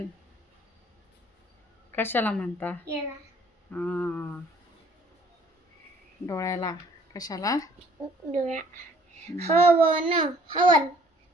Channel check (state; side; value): normal; both; correlation 0.58